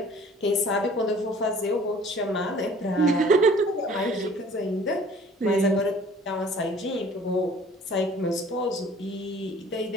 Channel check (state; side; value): normal; both; correlation 0.51